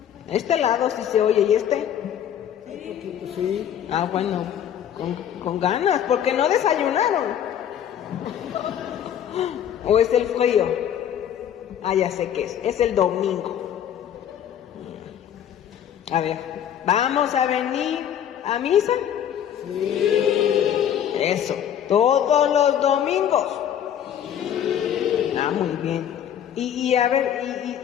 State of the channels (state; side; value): quieter; right; 9.7 dB